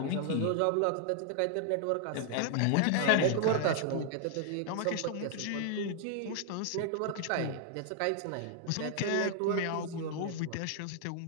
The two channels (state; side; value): different; both; correlation 0.00